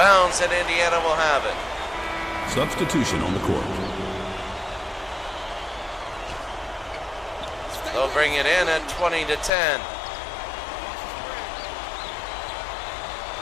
and Indiana will have it. Substitution on the court. They'll bring it in at 20-10.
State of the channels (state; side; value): drops out; right; at 9.5 s